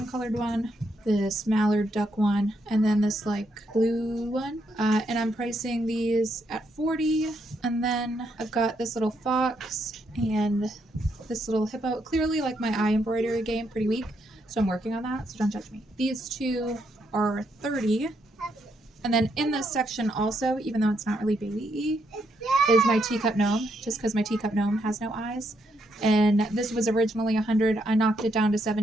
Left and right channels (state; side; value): normal; both; correlation 0.77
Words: colored one, this mallard duck one, and then this like blue one, and I'm pricing these at 40. And then I've got this little fox and this little hippo. Clearly like my eye embroidery game pretty weak, so I'm working on that, so don't judge me. These 2 are 30. And then in this section also, even though it's not really baby-y, is my teacup gnome, just because my teacup gnome has no eyes. And this was originally 100. I knocked it down to